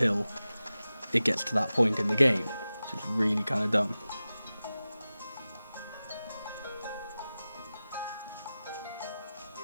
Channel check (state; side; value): inverted; both; correlation -0.95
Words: it gets to that point in the game, which is really kind of dumb.